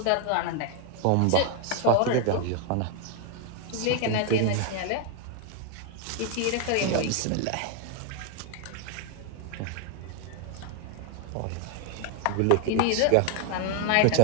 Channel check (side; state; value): both; different; correlation 0.01